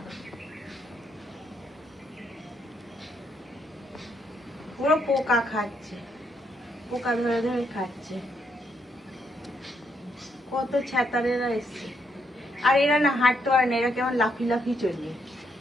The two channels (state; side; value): normal; both; correlation 0.76